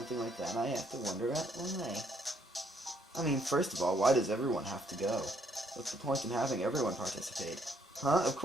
like that, I have to wonder why. I mean, first of all, why does everyone have to go? What's the point in having everyone participate? Huh? Of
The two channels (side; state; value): both; normal; correlation 0.69